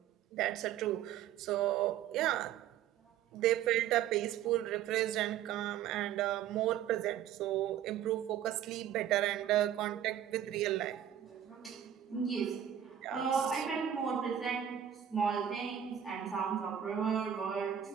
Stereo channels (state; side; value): quieter; left; 10.1 dB